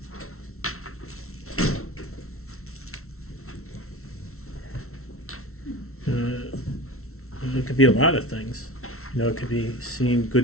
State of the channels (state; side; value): late; right; 0.63 ms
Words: It could be a lot of things. It could be seeing